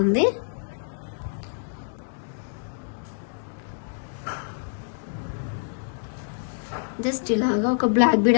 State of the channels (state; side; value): silent; right; digital silence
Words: జస్ట్ ఇలాగా ఒక బ్లాక్ బీడ్